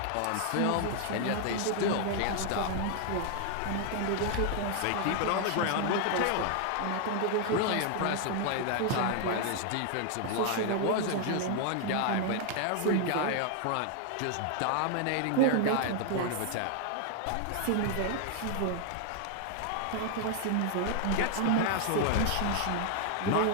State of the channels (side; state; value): both; different; correlation 0.00